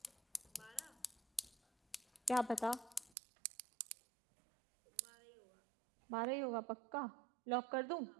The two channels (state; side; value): drops out; left; at 3.1 s